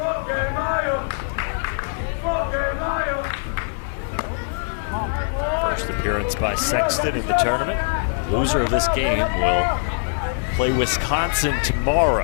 First appearance by Sexton in the tournament. Loser of this game will play Wisconsin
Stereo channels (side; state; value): right; silent; digital silence